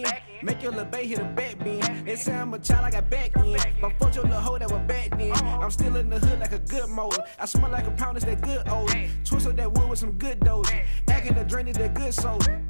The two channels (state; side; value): inverted; both; correlation -1.00